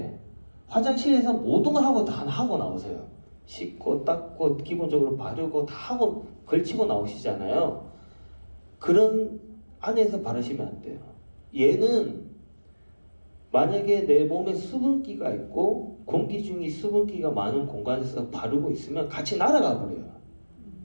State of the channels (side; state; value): both; inverted; correlation -1.00